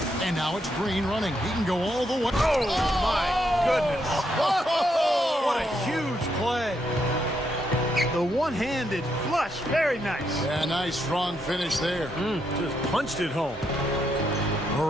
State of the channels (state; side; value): normal; both; correlation 0.78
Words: And now it's Green running. He can go all the way. Oh, my goodness. What a huge play. The one-handed flush. Very nice. Yeah, nice strong finish there. Just punched it home.